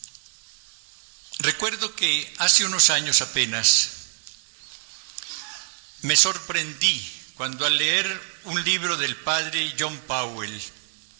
Recuerdo que hace unos años apenas me sorprendí cuando al leer un libro del padre John Powell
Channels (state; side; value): silent; left; 61 dB below the other